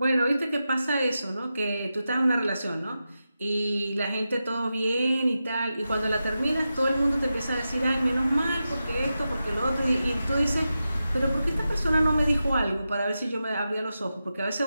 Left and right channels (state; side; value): inverted; both; correlation -0.91